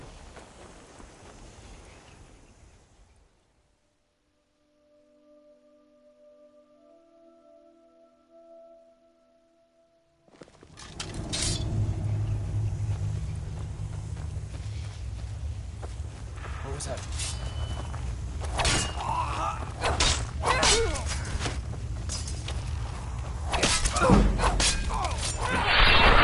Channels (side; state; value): both; identical; correlation 1.00